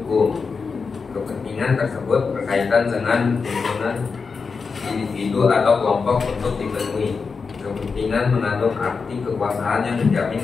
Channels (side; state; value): right; quieter; 5.0 dB